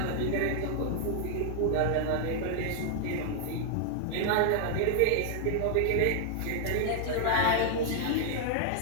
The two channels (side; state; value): both; different; correlation -0.01